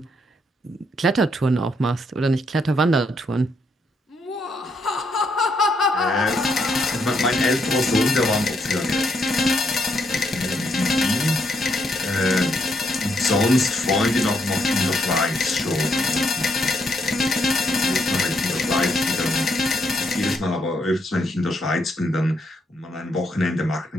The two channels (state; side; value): normal; both; correlation 0.76